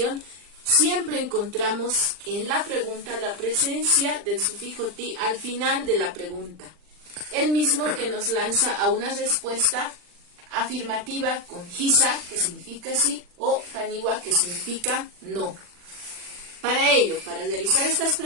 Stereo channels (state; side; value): late; left; 40 ms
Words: siempre encontramos en la pregunta la presencia del sufijo ti al final de la pregunta. El mismo que nos lanza a una respuesta afirmativa con hisa, que significa sí, o haniwa, que significa no. Para ello, para realizar estas